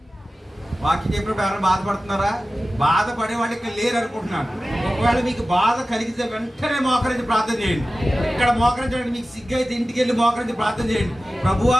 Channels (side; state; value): both; normal; correlation 0.95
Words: వాక్యం చెప్పినప్పుడు ఎవరైనా బాధపడుతున్నారా? బాధపడే వాళ్ళు ఇక్కడ లేరు అనుకుంటున్నాను. ఒకవేళ మీకు బాధ కలిగితే వెంటనే మోకరించి ప్రార్థన చేయండి. ఇక్కడ మోకరించండి. మీకు సిగ్గు అయితే ఇంటికి వెళ్ళి మోకరించి ప్రార్థన చేయండి. ప్రభువా